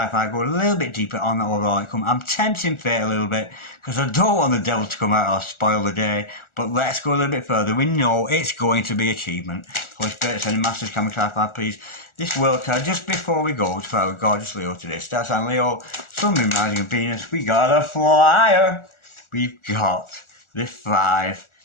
go a little bit deeper on that overall outcome. I'm tempting fate a little bit because I don't want the devil to come out or spoil the day. But let's go a little bit further. We know it's going to be achievement. Holy Spirit, sending masters, can we clarify, please? this world card just before we go for our gorgeous Leo today. Star sign Leo, Sun, Moon, Rising and Venus. We got a flyer. We've got the 5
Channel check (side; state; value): right; late; 1.4 ms